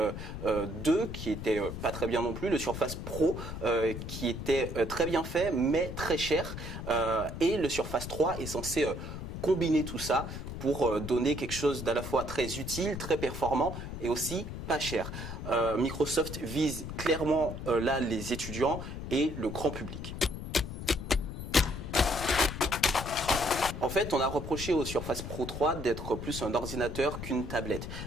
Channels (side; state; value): left; noise; rumble, 7 dB below the sound